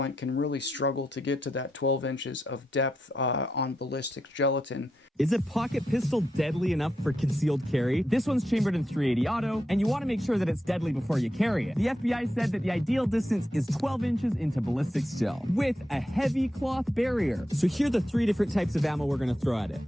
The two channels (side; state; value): both; normal; correlation 0.84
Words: can really struggle to get to that 12 inches of depth on ballistic gelatin. Is a pocket pistol deadly enough for concealed carry? This one's chambered in 380 auto, and you want to make sure that it's deadly before you carry it. The FBI said that the ideal distance is 12 inches into ballistics gel with a heavy cloth barrier. So here are the three different types of ammo we're going to throw at it.